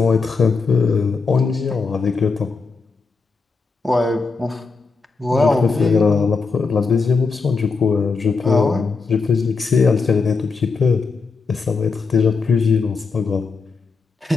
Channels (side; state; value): right; quieter; 4.5 dB